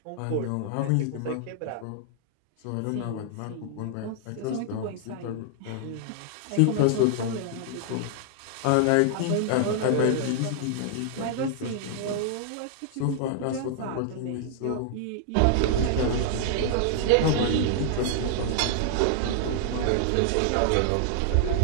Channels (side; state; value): both; different; correlation -0.01